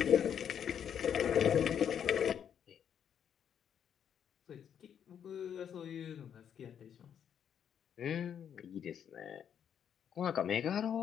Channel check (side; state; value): right; quieter; 8.6 dB